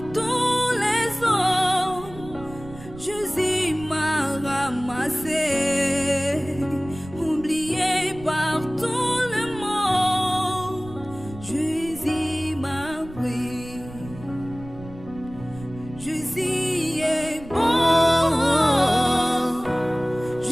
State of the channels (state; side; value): noise; right; rumble, 16 dB below the sound